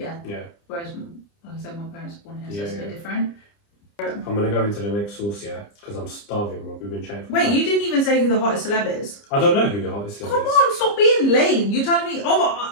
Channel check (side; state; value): right; late; 30 ms